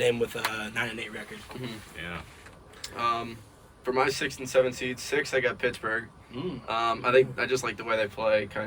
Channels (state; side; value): identical; both; correlation 1.00